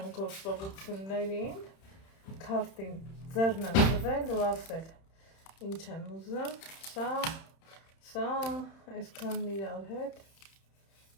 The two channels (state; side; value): late; right; 31 ms